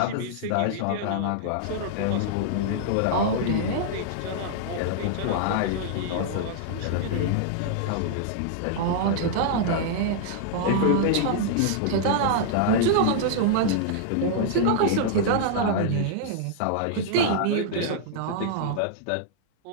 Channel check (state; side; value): different; both; correlation -0.01